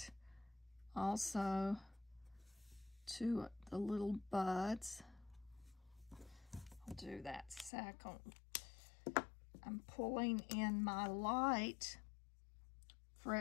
also to the little buds. I'll do that second. I'm pulling in my light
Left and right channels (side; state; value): right; drops out; at 7.7 s